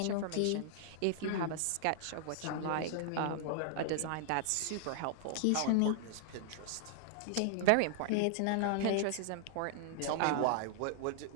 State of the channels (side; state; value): both; different; correlation 0.00